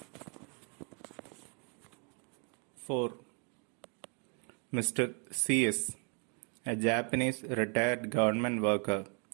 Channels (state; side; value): quieter; left; 38.9 dB